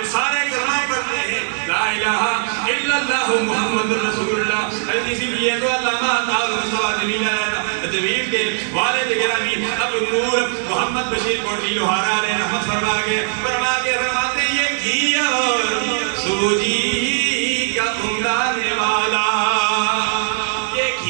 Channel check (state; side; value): silent; left; 65 dB below the other